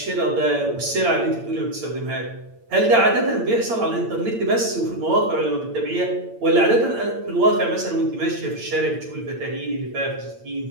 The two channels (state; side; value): late; left; 8.8 ms